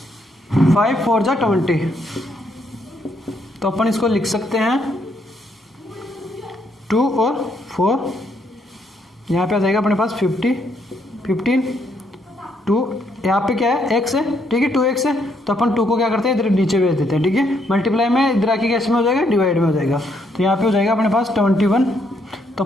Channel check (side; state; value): both; normal; correlation 0.73